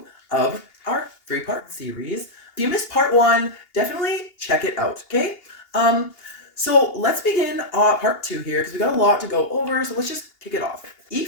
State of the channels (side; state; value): right; late; 2.8 ms